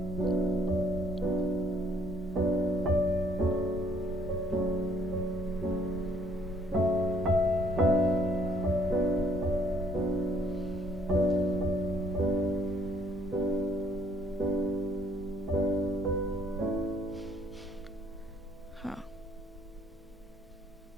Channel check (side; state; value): both; normal; correlation 0.65